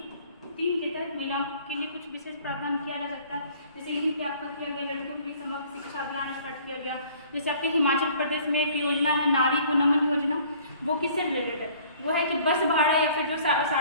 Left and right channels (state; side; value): inverted; both; correlation -0.54